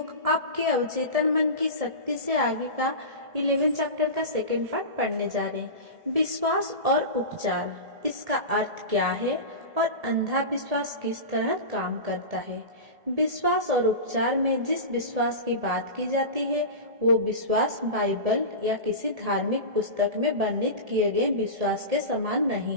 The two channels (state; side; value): late; left; 1.7 ms